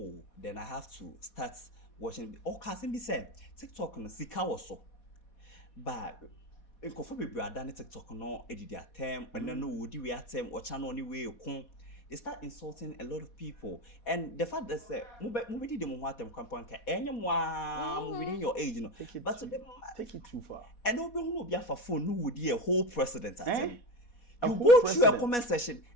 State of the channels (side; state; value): right; late; 4.2 ms